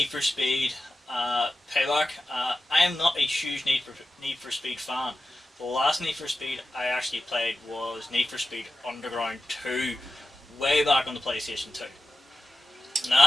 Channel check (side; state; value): both; normal; correlation 0.93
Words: for Speed Payback. I am not a huge Need for Speed fan. The last Need for Speed I actually played was Need for Speed Underground 2, way back on the PlayStation 2. And